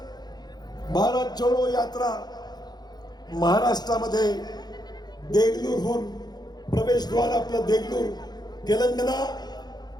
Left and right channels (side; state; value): right; late; 0.20 ms